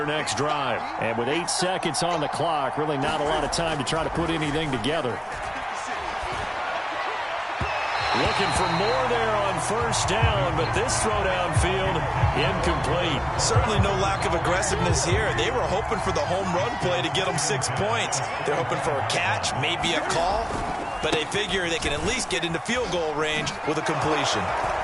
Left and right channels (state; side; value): identical; both; correlation 1.00